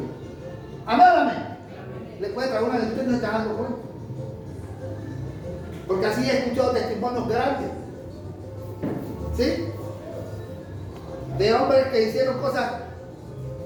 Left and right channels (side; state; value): both; identical; correlation 1.00